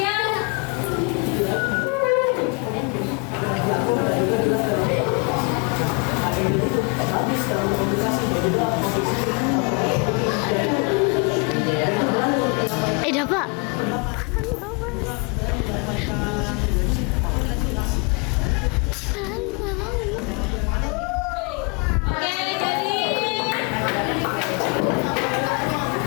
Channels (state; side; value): quieter; right; 34.4 dB